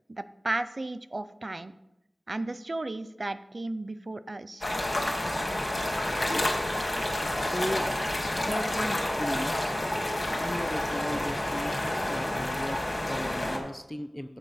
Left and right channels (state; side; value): normal; both; correlation 0.97